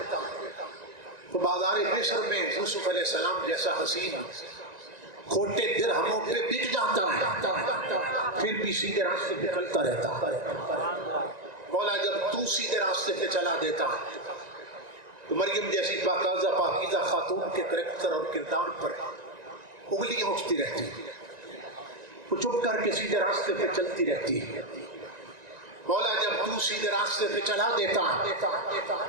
تو بازار مصر میں یوسف علیہ السلام جیسا حسین کھوٹے درہموں پہ بک جاتا ہے، پھر بھی سیدھے راستے پہ چلتا رہتا۔ مولا جب تو سیدھے راستے پہ چلا دیتا ہے تو مریم جیسی پاکیزہ خاتون کے کریکٹر اور کردار پر انگلیاں اٹھتی رہتی، وہ چپ کر کے سیدھے راستے پہ چلتی رہتی ہے۔ مولا جب تو سیدھے راستے پہ چلا دیتا ہے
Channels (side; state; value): left; late; 1.9 ms